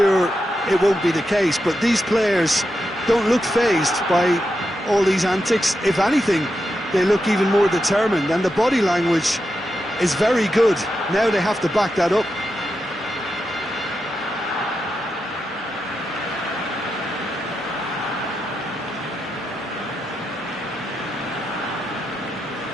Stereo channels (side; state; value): both; normal; correlation 0.87